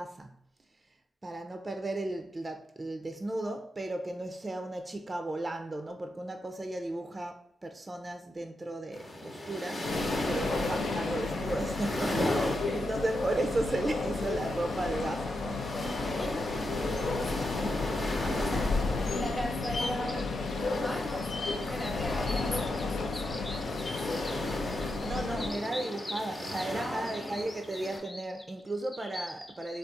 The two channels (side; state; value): both; normal; correlation 0.86